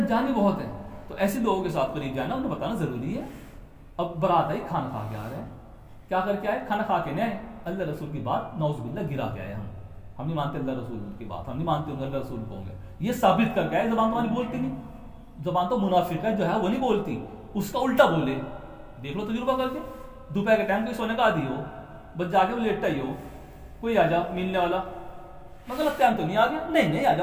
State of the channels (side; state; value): both; identical; correlation 1.00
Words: بھی بہت ہیں. تو ایسے لوگوں کے ساتھ قریب جانا, انہیں بتانا ضروری ہے. اب برات آئی, کھانا کھا کے آ رہے ہیں, کیا کر کے آئے, کھانا کھا کے نہیں آئے, اللہ رسول کی بات نعوذ باللہ گرا کے آئے. ہم نہیں مانتے اللہ رسول کی بات, ہم نہیں مانتے اللہ رسول کو ہوں گے, یہ ثابت کر کے آئے. زبان تو ہماری بولتی نہیں, زبان تو منافق ہے جو ہے وہ نہیں بولتی, اس کا الٹا بولے. دیکھ لو تجربہ کر کے, دوپہر کے ٹائم کوئی سونے کا عادی ہو, بس جا کے وہ لیٹا ہی ہو, کوئی آ جا ملنے والا, مگر ٹائم تو نہیں آ گیا, نہیں آ